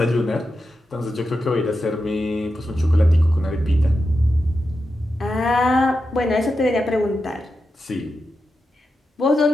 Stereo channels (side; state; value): both; normal; correlation 0.89